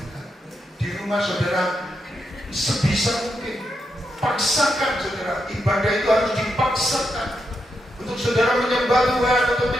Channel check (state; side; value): normal; both; correlation 0.83